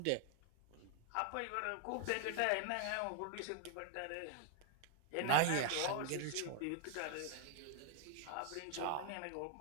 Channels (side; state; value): both; different; correlation 0.00